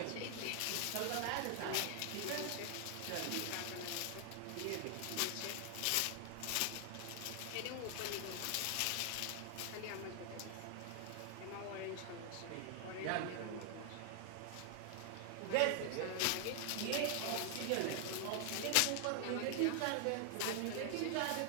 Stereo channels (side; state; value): both; different; correlation 0.00